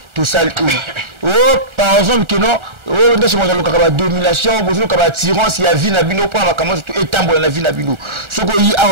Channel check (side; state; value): left; late; 1.4 ms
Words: tosali oyo par exemple keno oyo ndesi moto alokaka badomination bozoluka batirance ya vie na bino mpona makambo nyonso etambola na vie na bino soki oyi